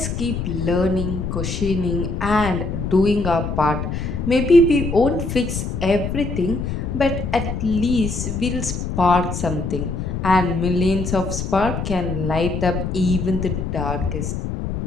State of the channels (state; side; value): noise; left; rumble, 4 dB below the sound